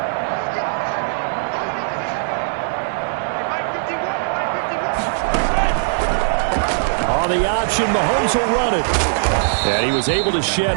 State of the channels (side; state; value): left; silent; 66 dB below the other